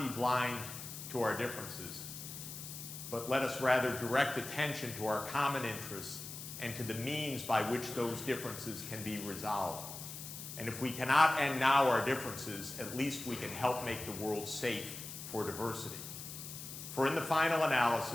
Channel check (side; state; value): left; noise; hiss, 10 dB below the sound